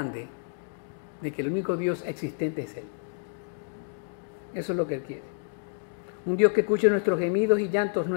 de que el único Dios existente es Él. Eso es lo que Él quiere. Un Dios que escuche nuestros gemidos y llantos,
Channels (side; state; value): right; silent; digital silence